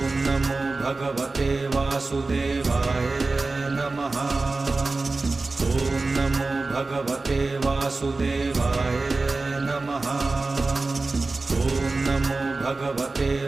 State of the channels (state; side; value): quieter; left; 3.5 dB